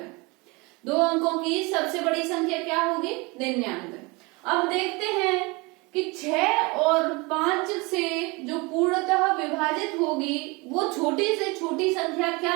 2 अंकों की सबसे बड़ी संख्या क्या होगी, 99। अब देखते हैं कि 6 और 5 से जो पूर्णतः विभाजित होगी वो छोटी से छोटी संख्या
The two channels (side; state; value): left; quieter; 26.3 dB